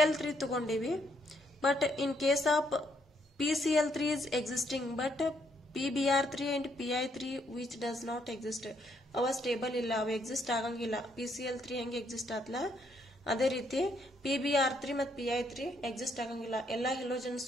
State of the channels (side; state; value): both; normal; correlation 0.73